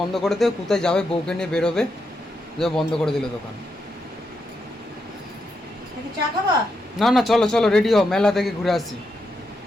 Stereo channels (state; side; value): normal; both; correlation 0.83